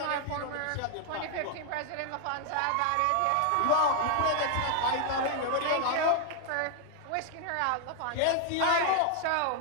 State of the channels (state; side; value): different; both; correlation 0.00